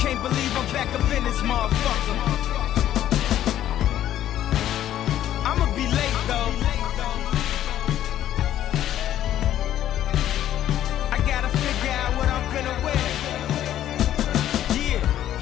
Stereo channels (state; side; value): quieter; right; 11.9 dB